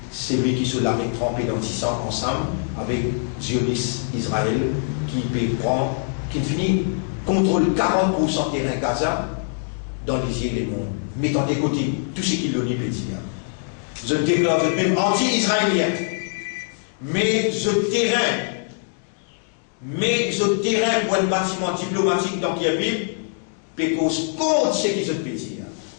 celui qui se l'a trempé dans 10 ans ensemble, avec Zionis Israël, qui finit contrôle 40% terrain Gaza dans les îles et monde, mettant de côté tout ce qu'il l'on y peut dire. Je déclare même anti-israélien, mais je terrain pour un bâtiment diplomatique dans Kiev, pécose contre ce qu'ils ont pu dire.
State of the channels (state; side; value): silent; right; digital silence